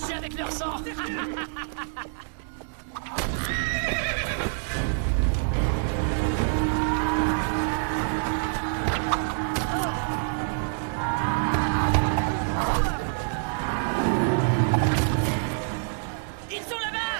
Avec leur sang. Ils sont là-bas!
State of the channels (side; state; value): left; silent; 61 dB below the other